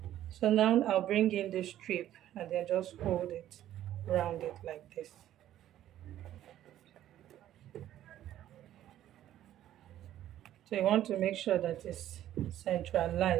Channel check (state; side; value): quieter; left; 12.4 dB